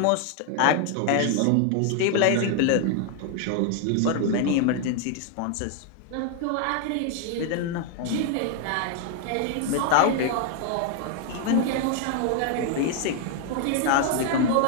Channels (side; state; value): both; different; correlation 0.00